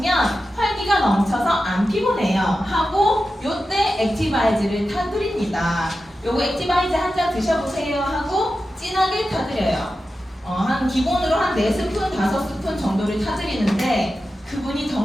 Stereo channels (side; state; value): both; normal; correlation 0.92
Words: 활기가 넘쳐서 안 피곤해요. 하고 요때 액티바이즈를 타드립니다. 요거 액티바이즈 한 잔 드셔보세요 하고 진하게 타드려요. 한 기본으로 한 4스푼, 5스푼 정도를 타드리는데 그분이